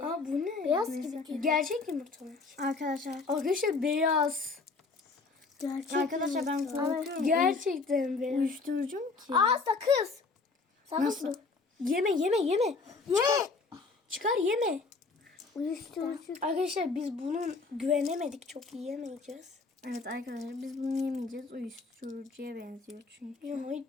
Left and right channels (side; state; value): right; quieter; 4.1 dB